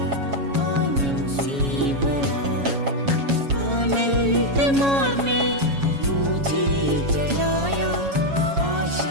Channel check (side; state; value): left; late; 7.2 ms